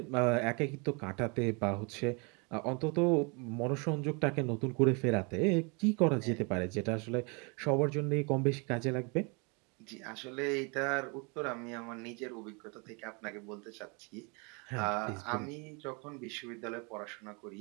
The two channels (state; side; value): quieter; left; 32.1 dB